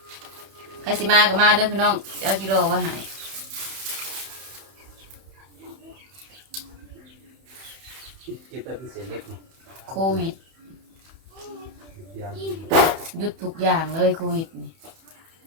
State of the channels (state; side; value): late; left; 31 ms